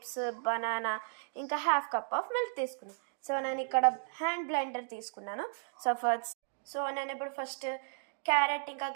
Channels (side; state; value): left; silent; digital silence